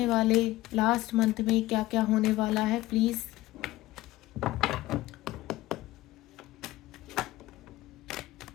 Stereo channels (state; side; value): quieter; right; 17.3 dB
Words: वाले लास्ट मंथ में क्या क्या होने वाला है। प्लीज़